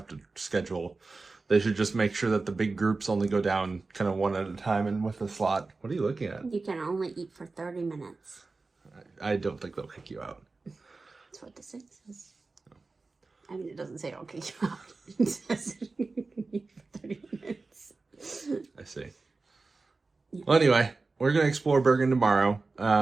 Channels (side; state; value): left; quieter; 3.8 dB